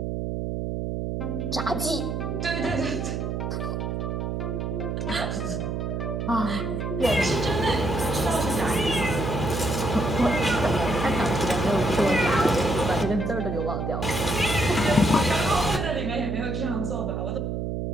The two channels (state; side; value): noise; right; hum, 2 dB below the sound